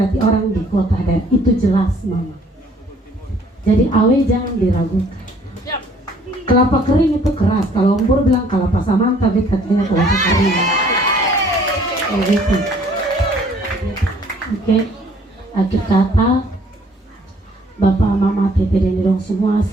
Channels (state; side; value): normal; both; correlation 0.59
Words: orang di kota dan itu jelas Mama. Jadi awe jangan diragukan. Kelapa kering itu keras. Kalau Ombur bilang kelapa samanta, bet katanya kelapa kering. Oh gitu. Oke. Akhir kata, Bapak, Mama, Tete, dan Dong semua